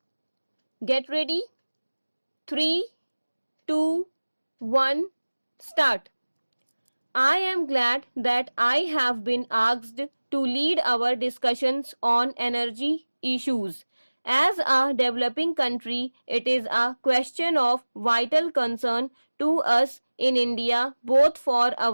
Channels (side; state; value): both; inverted; correlation -1.00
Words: Get ready. 3, 2, 1, start. I am glad that I have been asked to lead our discussions on energy issues. As a developing country, it is a question of vital concern to us in India, both for